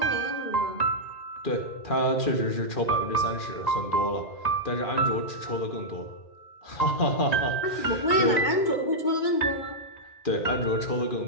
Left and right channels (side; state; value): right; late; 2.4 ms